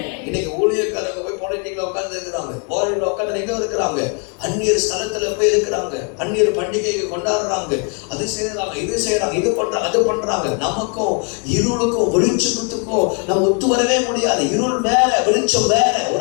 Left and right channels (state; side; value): quieter; right; 36.6 dB